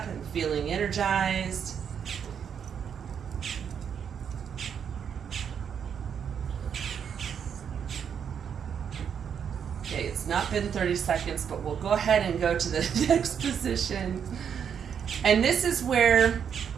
and feeling energized. Okay, it's not been 30 seconds, but we'll go ahead and go to the next position. And this is where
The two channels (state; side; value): quieter; left; 7.7 dB